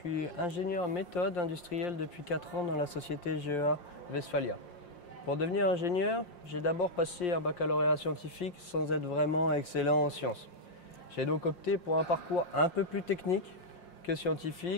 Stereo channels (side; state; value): right; late; 5.7 ms